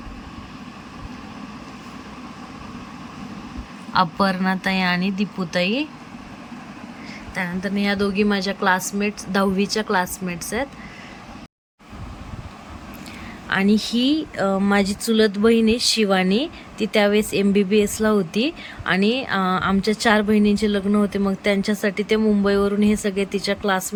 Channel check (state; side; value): identical; both; correlation 1.00